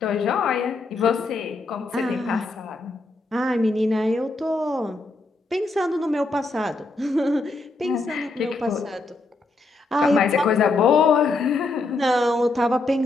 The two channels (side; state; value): right; quieter; 3.3 dB